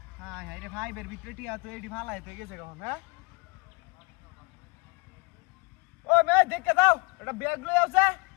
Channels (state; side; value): quieter; right; 28.4 dB